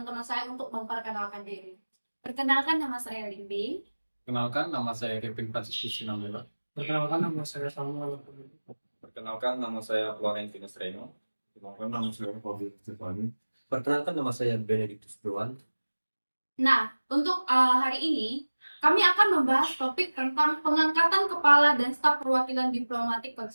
saya untuk memperkenalkan diri. Perkenalkan, nama saya Limbing. Kenalkan, nama saya Kevin Franciscus Sinambela. Perkenalkan, nama saya Samuel. Perkenalkan, nama saya Florentius Reno. Perkenalkan, nama saya Fabio Stefani. Perkenalkan, nama saya Benedictus Dewan. Nah, untuk hari ini, kami akan membahas topik tentang pengangkatan kepala dan staf perwakilan diplomatik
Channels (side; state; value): both; inverted; correlation -1.00